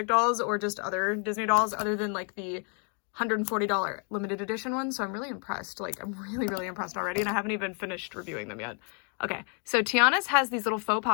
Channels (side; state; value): right; quieter; 40.0 dB